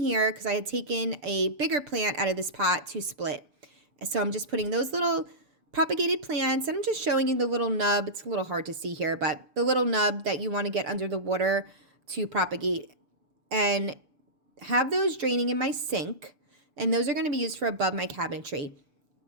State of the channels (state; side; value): late; left; 6.8 ms